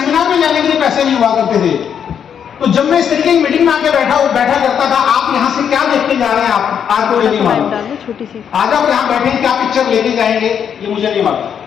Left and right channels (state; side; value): quieter; right; 8.1 dB